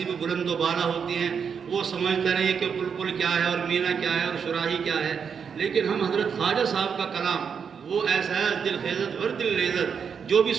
بھی بلند و بالا ہوتی ہیں، وہ سمجھتے نہیں کہ بلبل کیا ہے اور مینا کیا ہے اور شراحی کیا ہے، لیکن ہم حضرت خواجہ صاحب کا کلام وہ ایسا ہے دل خیزت ور دل لیزت، جو بھی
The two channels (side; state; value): left; quieter; 6.7 dB